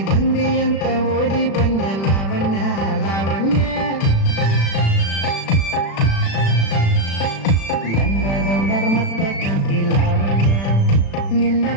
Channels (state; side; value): late; right; 36 ms